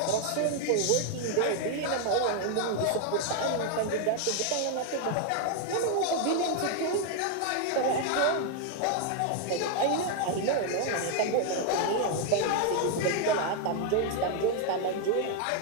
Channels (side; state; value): both; different; correlation 0.00